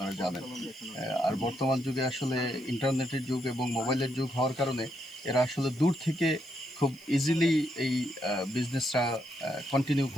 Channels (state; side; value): noise; left; hiss, 26 dB below the sound